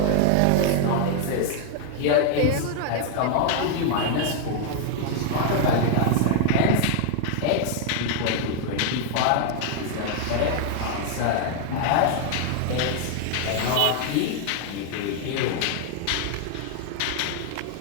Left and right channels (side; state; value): both; different; correlation 0.00